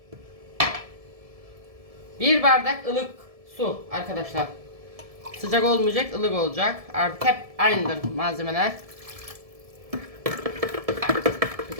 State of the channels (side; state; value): left; late; 1.7 ms